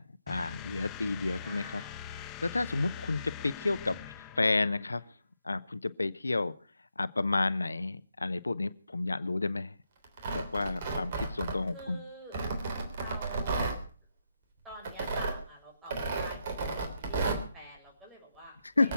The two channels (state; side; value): inverted; both; correlation -0.85